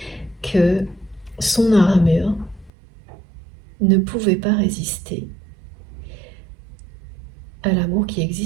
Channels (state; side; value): drops out; left; at 2.7 s